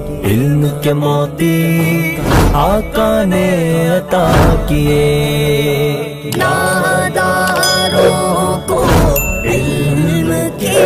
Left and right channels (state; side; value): identical; both; correlation 1.00